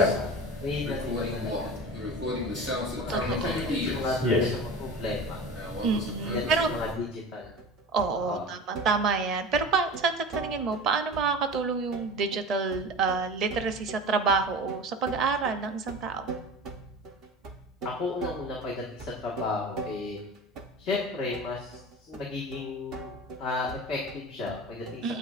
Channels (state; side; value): normal; both; correlation 0.33